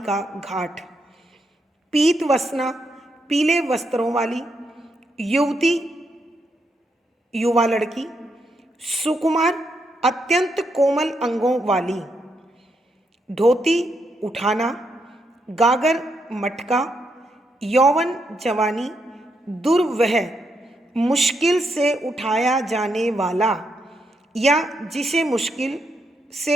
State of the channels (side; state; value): both; normal; correlation 0.79